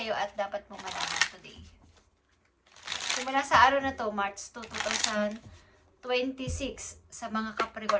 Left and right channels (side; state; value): both; identical; correlation 1.00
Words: at dapat mong malaman today. Simula sa araw na to, March 2, 2026, sa mga